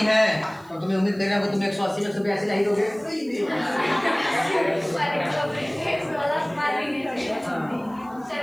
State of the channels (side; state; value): right; noise; hiss, 29 dB below the sound